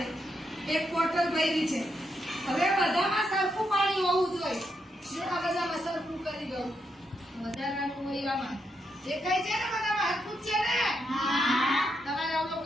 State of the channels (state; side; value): normal; both; correlation 0.81